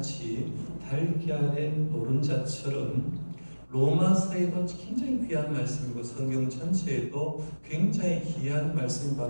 달걀의 노른자처럼 로마서에도 굉장히 귀한 말씀이고 성경 전체에도 굉장히 귀한 말씀이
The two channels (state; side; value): inverted; both; correlation -1.00